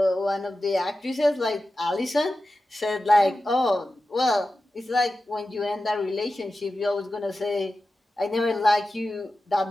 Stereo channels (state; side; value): normal; both; correlation 0.93